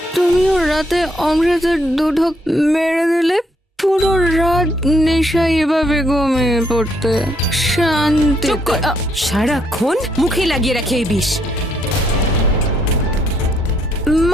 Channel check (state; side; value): normal; both; correlation 0.72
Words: তুমিও রাতে অমৃতের দুধক মেরে দিলে। পুরো রাত নেশায় এভাবে ঘুমিয়ে পড়তে। শান্তি। চুপ কর, সারাক্ষণ মুখে লাগিয়ে রাখে এই বিষ।